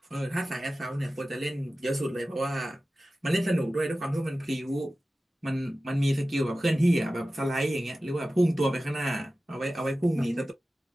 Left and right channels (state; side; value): normal; both; correlation 0.95